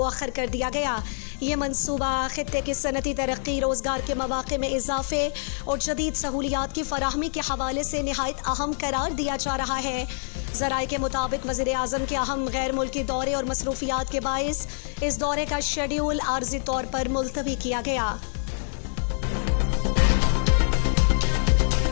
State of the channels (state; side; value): silent; right; digital silence